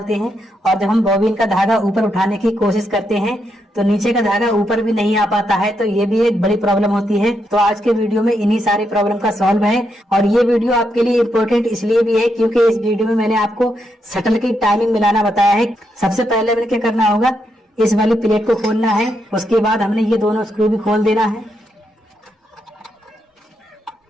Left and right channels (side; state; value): both; normal; correlation 0.81